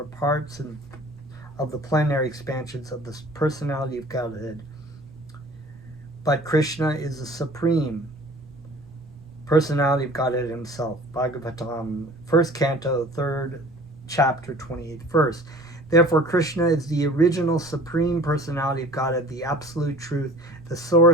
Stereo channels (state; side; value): noise; right; rumble, 24 dB below the sound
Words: parts of the plenary expansions of the personality of Godhead. But Krishna is the supreme personality of Godhead himself. Bhagavatam, 1st canto, 3rd chapter, 28th verse. Therefore, Krishna is the original supreme personality of Godhead, the absolute truth, the